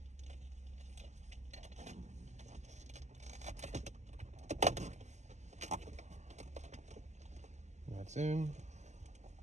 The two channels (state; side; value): late; left; 0.33 ms